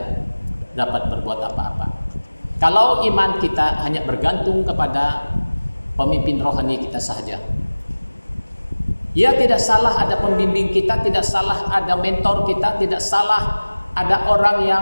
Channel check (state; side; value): inverted; both; correlation -1.00